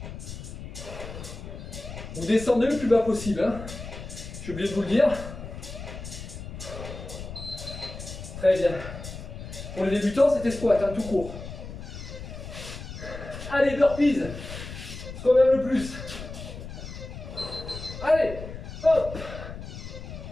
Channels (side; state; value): left; noise; rumble, 10 dB below the sound